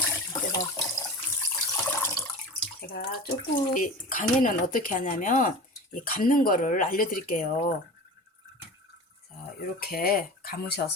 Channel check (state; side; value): normal; both; correlation 0.34